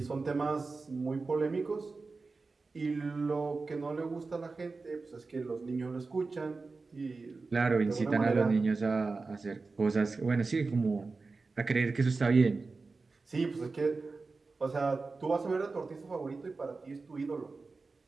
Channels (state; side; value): quieter; left; 4.0 dB